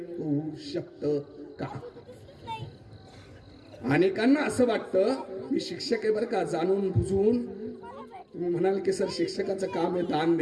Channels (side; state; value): both; identical; correlation 1.00